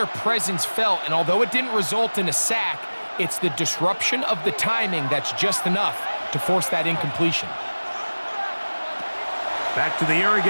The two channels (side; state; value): both; inverted; correlation -1.00